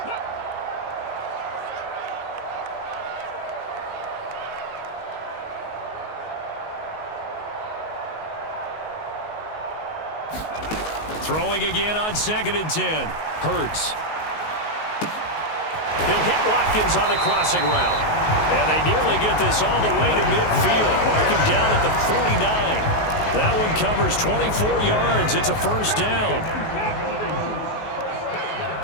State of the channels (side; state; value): right; late; 19 ms